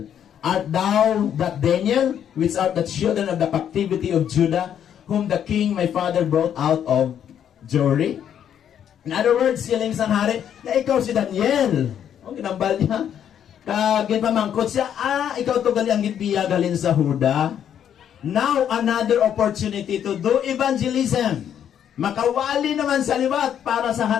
art thou that Daniel, which art the children of the captivity of Judah, whom the king my father brought out of Jewry? In other words, siling sang hari, na ikaw si Daniel. O, ginambal niya. Ginpamangkot siya, ikaw to gali ang gitbiya galin sa Huda. Now, another opportunity to do evangelism. Makawali naman sa liwat para sa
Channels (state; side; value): quieter; right; 9.4 dB